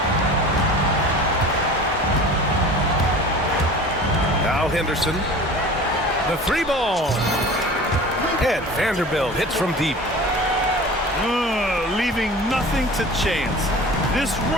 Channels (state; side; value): normal; both; correlation 0.40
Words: Now Henderson. The three ball. And Vanderbilt hits from deep. Leaving nothing to chance. This